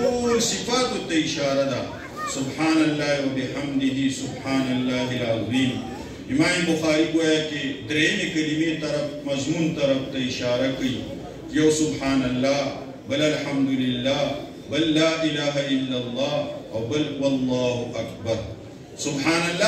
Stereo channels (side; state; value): both; identical; correlation 1.00